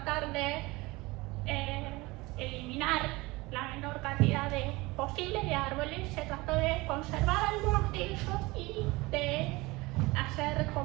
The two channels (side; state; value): left; quieter; 22.3 dB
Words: de eliminar la menor cantidad posible de árboles, se trató de conservar algunos de ellos y de hacer